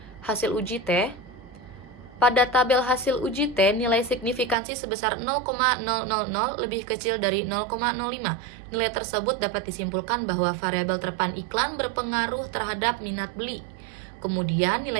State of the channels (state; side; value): drops out; left; at 4.5 s